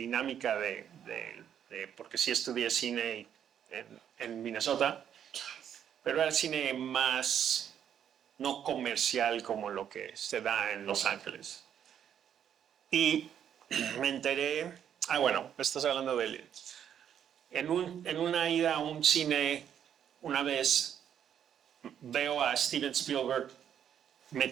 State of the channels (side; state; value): left; quieter; 9.2 dB